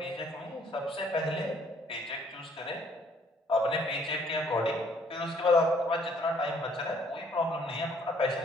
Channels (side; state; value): both; normal; correlation 0.62